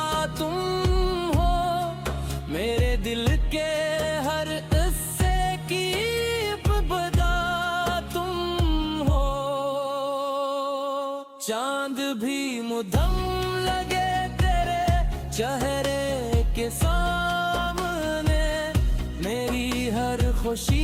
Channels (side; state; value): both; identical; correlation 1.00